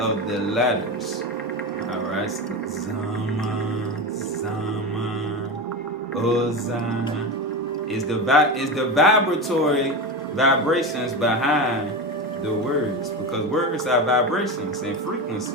the letters. All right, so Zama, Zama, Oza. Is the vibratory vibrations behind the words, because words are vibrations and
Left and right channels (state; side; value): normal; both; correlation 0.21